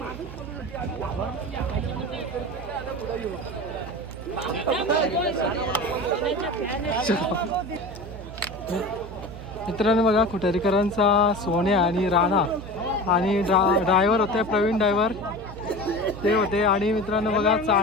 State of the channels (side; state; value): right; noise; hum, 12 dB below the sound